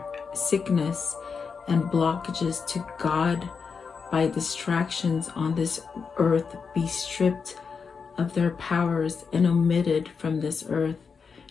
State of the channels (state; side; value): quieter; right; 5.6 dB